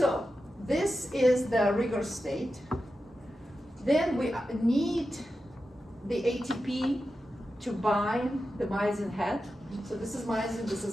this is the rigor state. Then we need the ATP to bind the myosin head. So this is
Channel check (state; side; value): normal; both; correlation 0.91